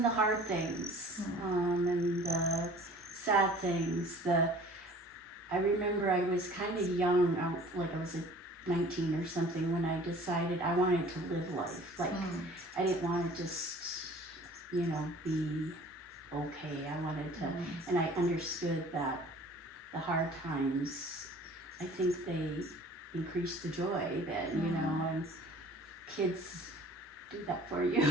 the hard things, and the sad things. I remember I was kind of young, like I was 19 or something, when I decided I wanted to live life. Like, I didn't want to just, be okay. I wanted to, and I understood that the hard times, I think they increase the joy then, you know, and kids do that for you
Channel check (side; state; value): both; normal; correlation 0.48